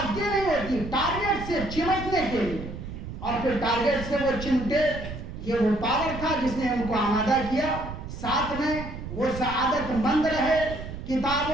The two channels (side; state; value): right; noise; rumble, 9 dB below the sound